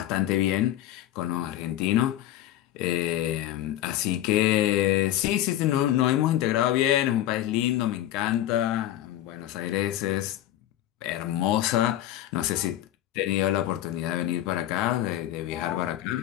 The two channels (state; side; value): quieter; right; 13.2 dB